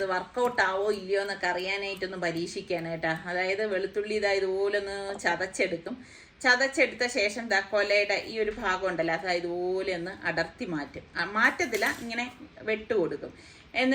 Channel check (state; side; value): identical; both; correlation 1.00